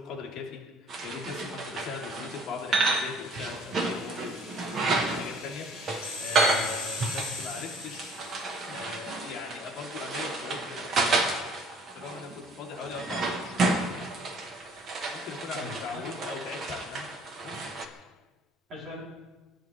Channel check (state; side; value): normal; both; correlation 0.54